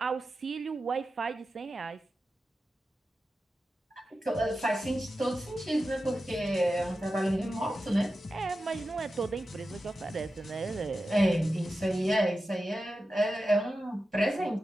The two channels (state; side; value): normal; both; correlation 0.92